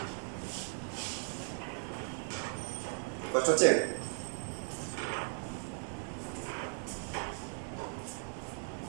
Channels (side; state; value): left; silent; 53 dB below the other